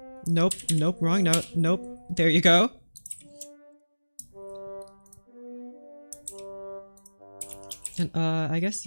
Nope, nope, wrong note. Nope. There you go. And I guess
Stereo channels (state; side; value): inverted; both; correlation -1.00